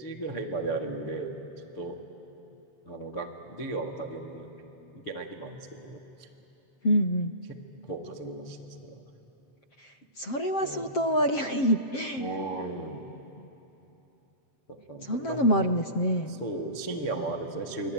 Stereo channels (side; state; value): right; late; 7.5 ms